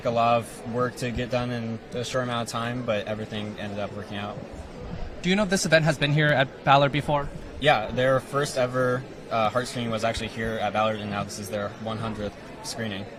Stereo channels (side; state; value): both; identical; correlation 1.00